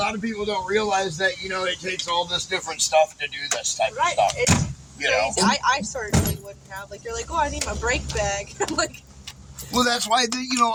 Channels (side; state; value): both; identical; correlation 1.00